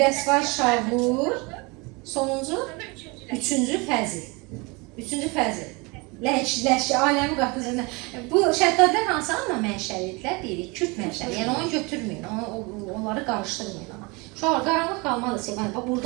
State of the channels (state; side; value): quieter; left; 27.4 dB